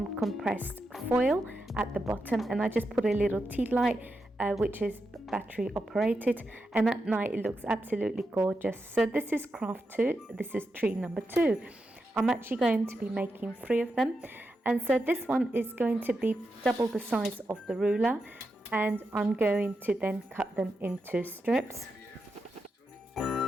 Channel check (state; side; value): normal; both; correlation 0.87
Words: compressed foil at the bottom, and I just put a little tea light which is battery operated, and at night it looks absolutely gorgeous. So this is craft 2. This is tree number 2. I'm actually going to be making 3 of them, and so this one is going to be double the size of the ruler, and I'm going to then cut them into strips.